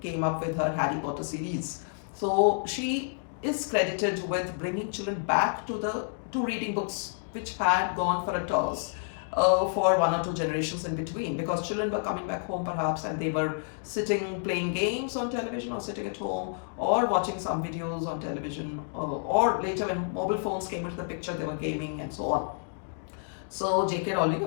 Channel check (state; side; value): silent; right; digital silence